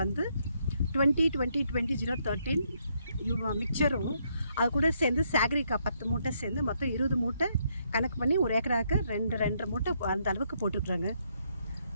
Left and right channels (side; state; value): both; inverted; correlation -0.74